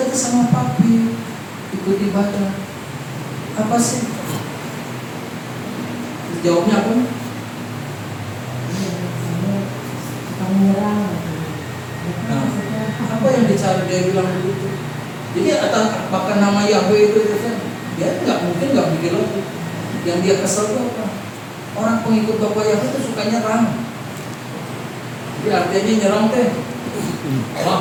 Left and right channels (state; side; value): identical; both; correlation 1.00